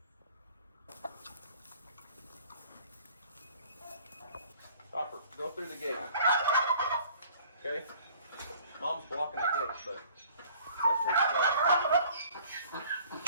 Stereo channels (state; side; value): inverted; both; correlation -0.52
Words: Sulphur, go through the gate. Okay? Mom's blocking the gate, but that's where you